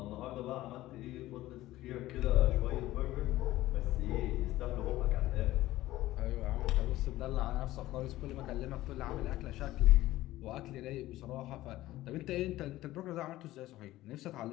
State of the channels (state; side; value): quieter; right; 16.2 dB